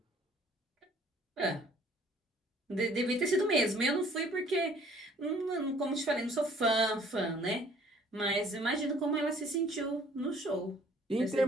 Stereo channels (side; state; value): both; normal; correlation 0.56